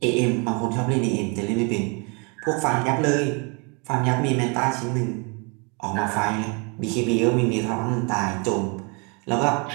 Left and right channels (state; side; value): quieter; left; 32.8 dB